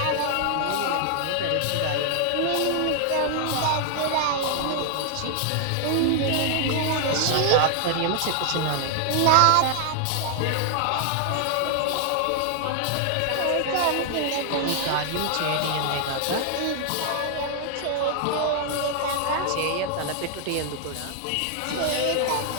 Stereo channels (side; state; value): both; different; correlation 0.00